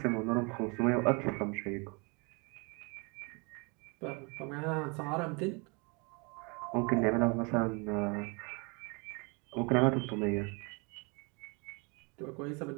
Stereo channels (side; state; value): left; quieter; 30.8 dB